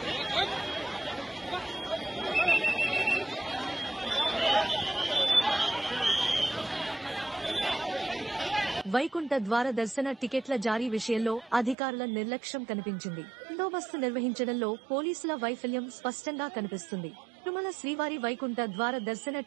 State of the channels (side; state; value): left; drops out; at 11.8 s